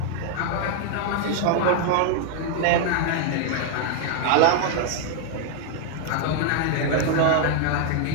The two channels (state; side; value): different; both; correlation 0.00